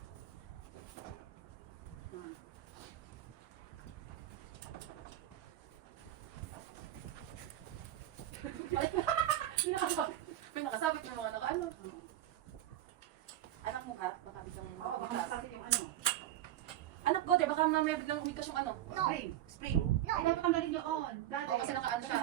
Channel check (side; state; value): left; quieter; 13.1 dB